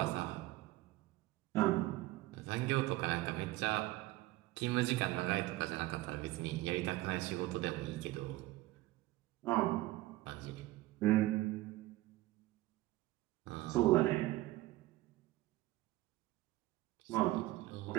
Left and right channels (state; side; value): quieter; left; 17.8 dB